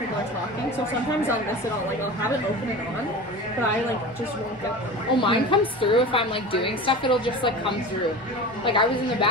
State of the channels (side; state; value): both; normal; correlation 0.32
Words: are talking. So sometimes I'll miss it all. Like I'll have it open and on, but I like just won't get them. Oh, mine comes through if I'm like doing stuff. It'll just like come through. Like I was in the